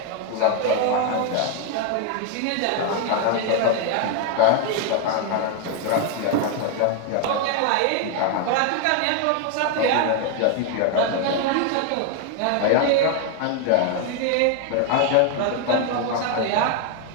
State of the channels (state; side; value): different; both; correlation 0.01